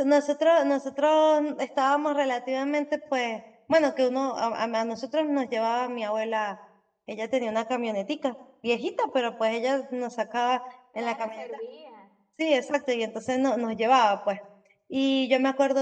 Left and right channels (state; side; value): identical; both; correlation 1.00